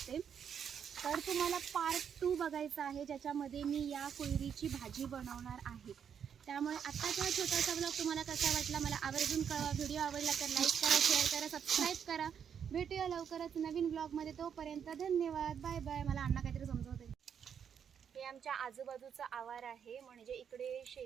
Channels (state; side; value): quieter; left; 7.9 dB